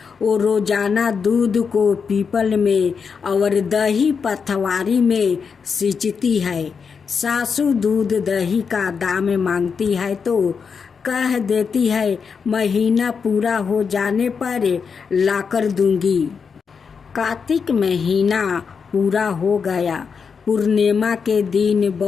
वो रोजाना दूध को पीपल में और दही पथवारी में सींचती है। सासू दूध दही का दाम मांगती है तो कह देती है महीना पूरा हो जाने पर लाकर दूंगी। कार्तिक महीना पूरा हो गया। पूर्णिमा के दिन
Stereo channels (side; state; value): right; quieter; 5.9 dB